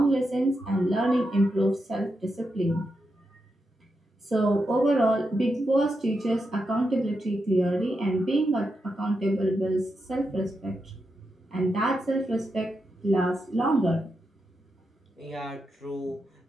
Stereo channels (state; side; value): normal; both; correlation 0.86